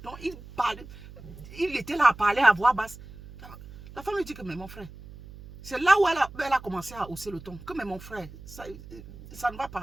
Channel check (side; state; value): right; noise; hum, 17 dB below the sound